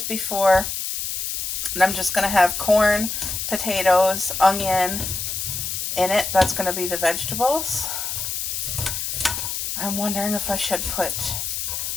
before. And I'm just going to have corn, potatoes, onion in it. That's going to be the vegetables. I'm wondering if I should put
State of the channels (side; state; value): left; noise; hiss, 3 dB below the sound